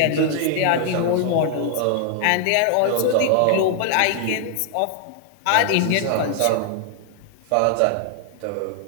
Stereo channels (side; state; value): both; different; correlation 0.00